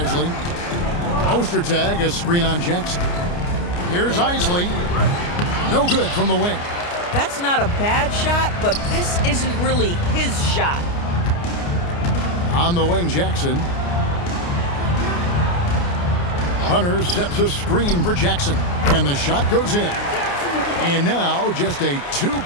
Ostertag, a screen on Jackson. Here's Isley. No good from the wing. That's not a bad shot, but this isn't really his shot. On the wing, Jackson. Hunter sets a screen for Jackson. And the shot goes in. And now just a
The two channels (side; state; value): right; late; 29 ms